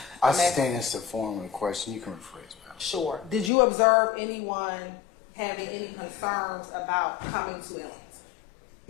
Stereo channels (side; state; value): right; drops out; at 3.5 s